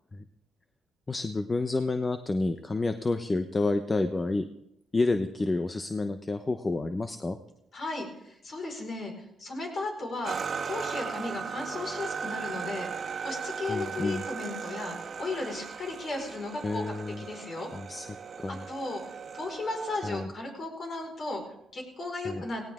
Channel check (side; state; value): both; normal; correlation 0.89